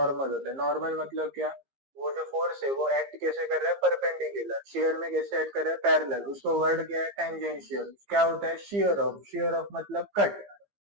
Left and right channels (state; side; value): late; left; 15 ms